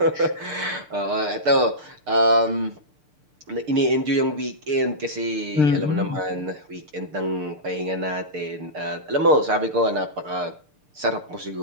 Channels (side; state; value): left; late; 6.7 ms